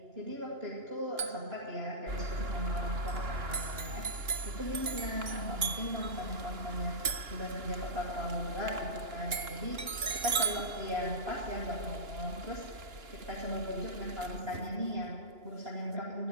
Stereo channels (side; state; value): left; late; 2.9 ms